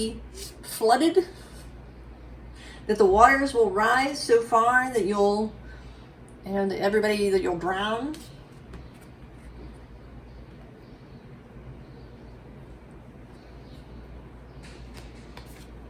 flooded? That the waters will rise so far that you'll, you know, that everybody, that you'll drown?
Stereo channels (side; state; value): both; identical; correlation 1.00